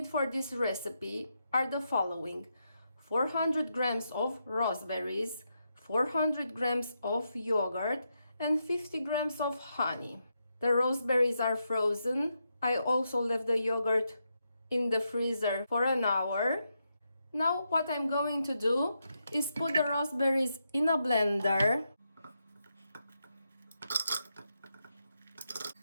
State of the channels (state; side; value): inverted; both; correlation -0.84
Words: for this recipe are the following: 400 grams of raspberries, 400 grams of yogurt and 50 grams of honey. The raspberries are frozen. I also left the yogurt in the freezer for an hour. Now what I'm going to do is put the raspberries in a blender